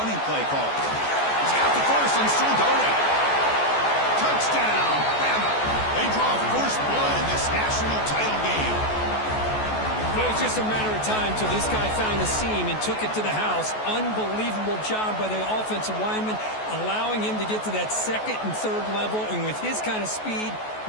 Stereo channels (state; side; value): late; right; 14 ms